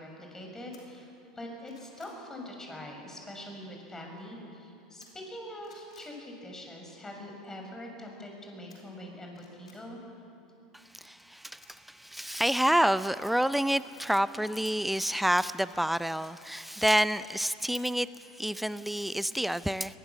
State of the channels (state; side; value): normal; both; correlation 0.96